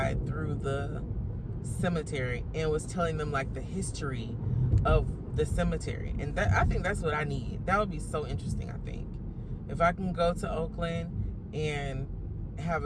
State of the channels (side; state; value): both; identical; correlation 1.00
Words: through the cemetery and was telling them like the history of the cemetery. And that, I think that's what I need. That would be so interesting, I think. If I can go to Oakland and have